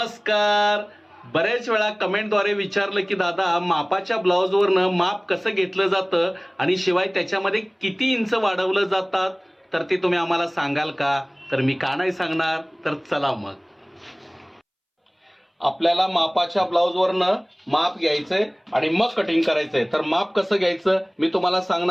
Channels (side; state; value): both; identical; correlation 1.00